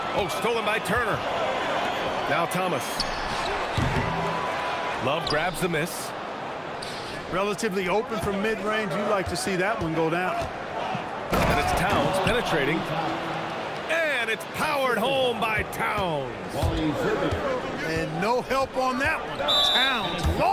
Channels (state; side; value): identical; both; correlation 1.00